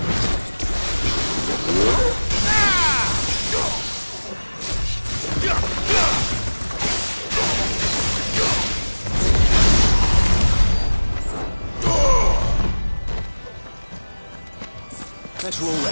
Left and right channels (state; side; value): inverted; both; correlation -1.00